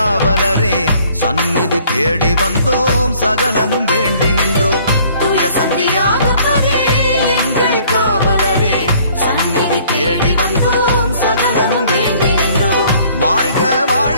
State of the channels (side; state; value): both; inverted; correlation -0.58